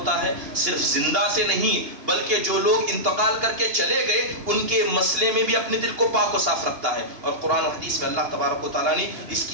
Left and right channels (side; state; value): left; late; 2.8 ms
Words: ہے؟ صرف زندہ سے نہیں بلکہ جو لوگ انتقال کر کے چلے گئے ان کے مسئلے میں بھی اپنے دل کو پاک و صاف رکھتا ہے, اور قرآن و حدیث میں اللہ تبارک و تعالیٰ نے اس